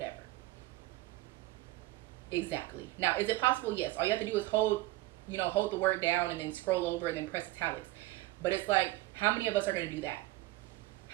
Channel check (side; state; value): left; quieter; 18.4 dB